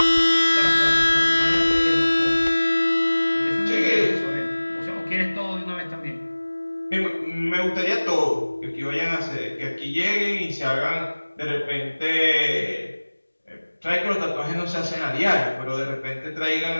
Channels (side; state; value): both; inverted; correlation -1.00